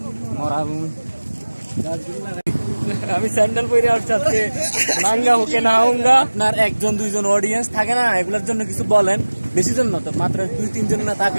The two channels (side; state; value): both; inverted; correlation -1.00